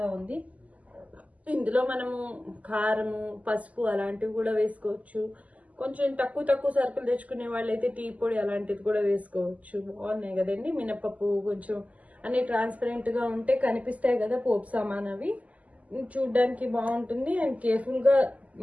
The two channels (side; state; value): left; late; 0.073 ms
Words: ఉంది. ఇందులో మనము కారము, పసుపు అలాంటివి కూడా వేసుకోవచ్చు. కొంచెం తక్కువ సరుకులు తెచ్చుకునే వాళ్ళైతే టీ పొడి అలాంటిది కూడా వేసుకోవచ్చు. బాగున్నాయి కదండి. మినపప్పు కొంచెం అన్ని ట్రాన్స్పరెంట్గా ఉంటే కనిపిస్తాయి కదా పోపు సామాన్, అవి చూడ్డానికి బాగుంటుంది. అండ్ కేర్ఫుల్గా